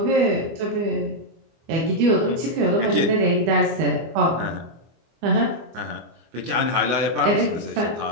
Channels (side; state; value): left; late; 24 ms